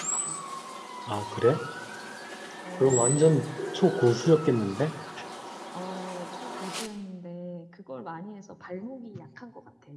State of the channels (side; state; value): both; identical; correlation 1.00